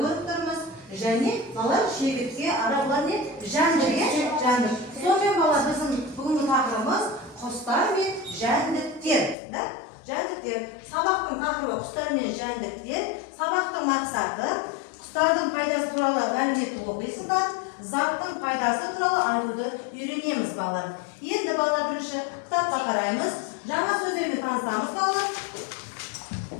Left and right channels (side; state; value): right; drops out; at 9.3 s